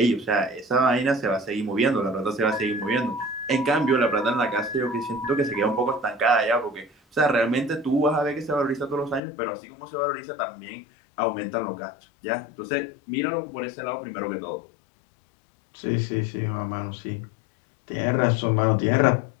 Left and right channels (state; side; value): drops out; right; at 9.2 s